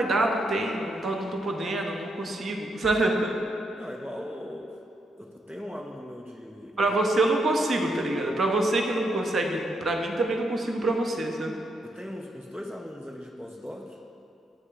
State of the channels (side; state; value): both; normal; correlation 0.79